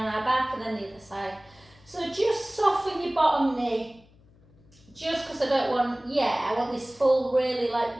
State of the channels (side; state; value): left; noise; hum, 28 dB below the sound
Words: our back, and then the other side. So just soften your bottom knee, just because I want this full, really like